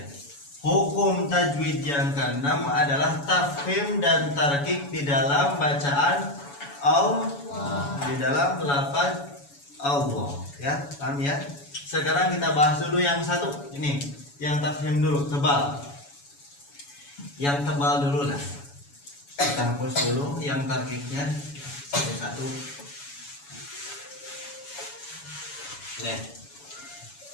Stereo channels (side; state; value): right; late; 7.1 ms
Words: Hukum tajwid yang ke-6 adalah tafkhim dan tarqiq di dalam bacaan Allah, di dalam lafaz Allah ya. Paham ya? Sekarang kita bahas dulu yang satu ini, yang tafkhim dulu, tebal. Yang tebal dulu lah. Kita hapus dulu yang tarqiqnya satu-satu. Nih.